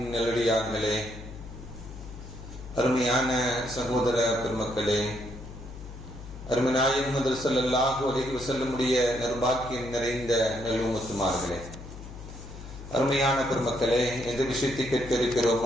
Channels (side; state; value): left; noise; hum, 13 dB below the sound